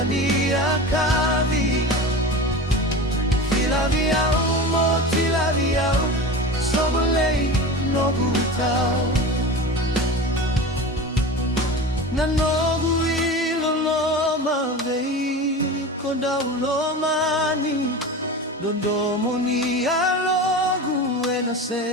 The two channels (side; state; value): both; normal; correlation 0.30